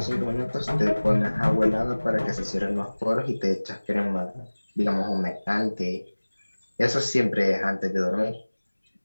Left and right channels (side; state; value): both; inverted; correlation -1.00